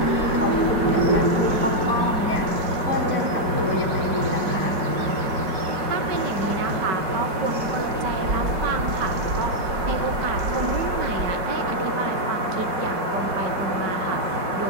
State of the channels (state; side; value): late; left; 4.9 ms